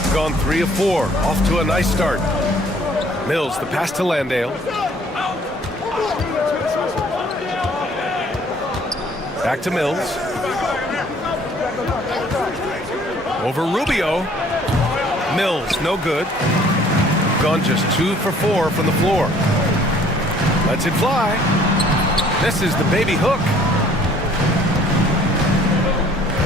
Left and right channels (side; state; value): both; normal; correlation 0.57